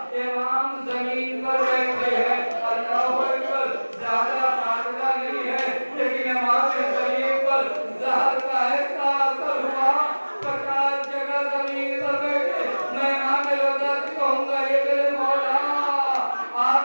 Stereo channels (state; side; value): inverted; both; correlation -1.00